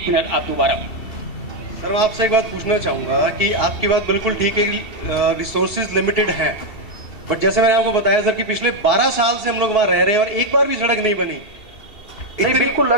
मिनट आप दोबारा। सर मैं आपसे एक बात पूछना चाहूंगा कि आपकी बात बिल्कुल ठीक है कि रिसोर्सेज लिमिटेड हैं, बट जैसे मैंने आपको बताया सर कि पिछले 12 साल से हम लोग वहां रह रहे हैं और एक बार भी सड़क नहीं बनी। नहीं बिल्कुल,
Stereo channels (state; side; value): late; right; 2.7 ms